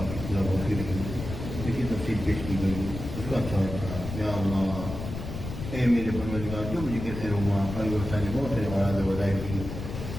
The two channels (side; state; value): left; noise; rumble, 7 dB below the sound